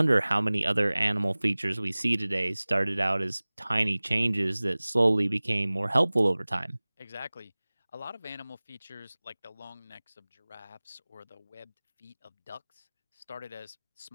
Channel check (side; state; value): both; inverted; correlation -1.00